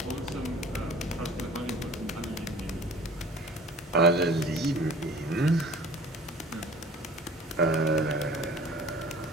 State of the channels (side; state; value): both; normal; correlation 0.46